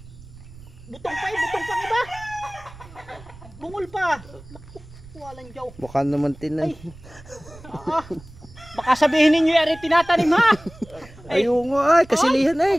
butong pa butong pang iba. Bungol pa. Walang jaw. Baka naman tinan. Baka sabihin ninyo yari tinatanim ha. Ayun nga ay, kasilihan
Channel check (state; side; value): noise; right; rumble, 20 dB below the sound